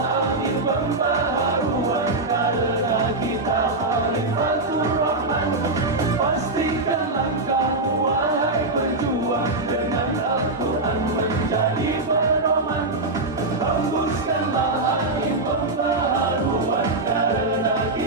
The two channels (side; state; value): left; quieter; 3.1 dB